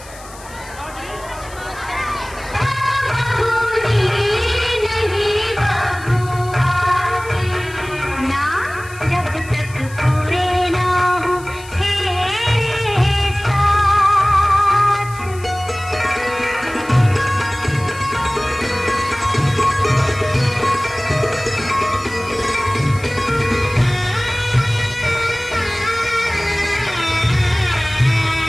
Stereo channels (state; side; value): noise; left; hiss, 20 dB below the sound